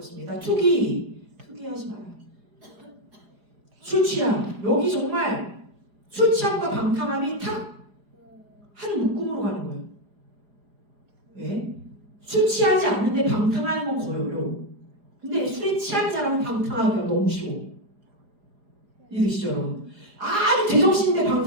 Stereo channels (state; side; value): late; left; 4.9 ms